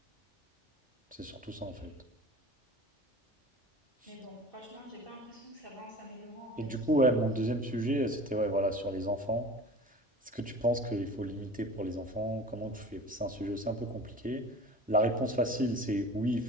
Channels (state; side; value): normal; both; correlation 0.40